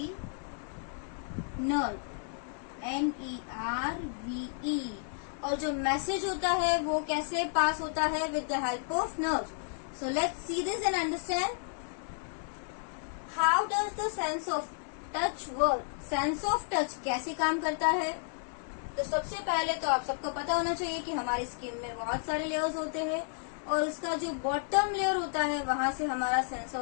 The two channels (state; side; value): silent; right; 56 dB below the other